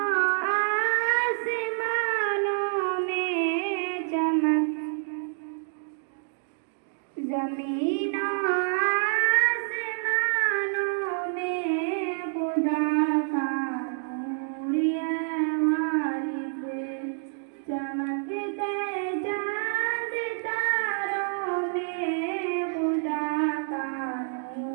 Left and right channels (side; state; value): left; silent; digital silence